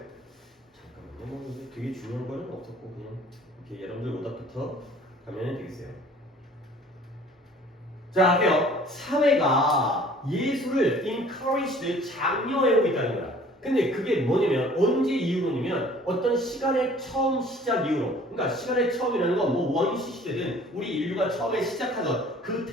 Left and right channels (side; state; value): both; normal; correlation 0.52